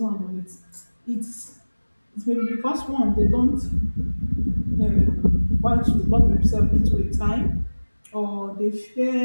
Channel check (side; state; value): both; inverted; correlation -1.00